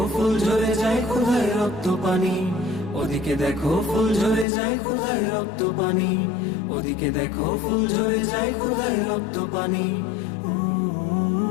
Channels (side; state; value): right; drops out; at 4.5 s